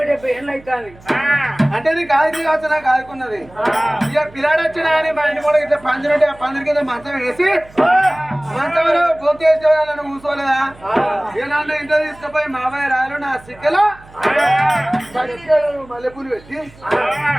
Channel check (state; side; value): noise; right; hum, 23 dB below the sound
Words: అంటే నీకు ఆది కావచ్చు నాకు ఆదుకున్నది ఇక పిల్లాడు వచ్చినా అని మా ఇంటి కూడా ఇట్లా పందిరి ఉంటే ఆ పందిరి కింద మంచం వేసి మంచంలో గొంతు వేసుకోవాలని కూర్చోలేదా ఇక నన్ను ఇంట్లో తీసుకుపోయి మామయ్య రాయలు నా సిక్కలో మల్లెపూలు పెట్టి